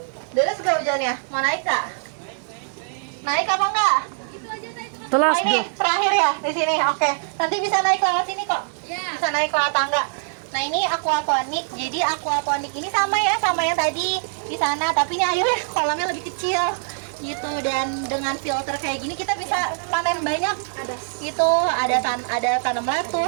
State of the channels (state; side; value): silent; left; 61 dB below the other